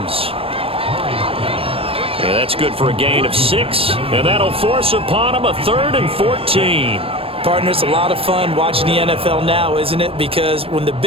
And that's good for a gain of 6. And that'll force upon him a 3rd and 14. Partner, it's a lot of fun watching the NFL now, isn't it? Because when the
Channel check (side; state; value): left; late; 0.27 ms